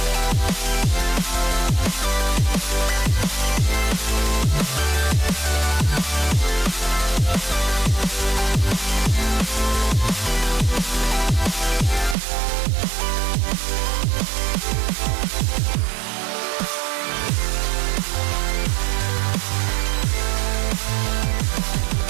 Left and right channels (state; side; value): drops out; left; at 12.2 s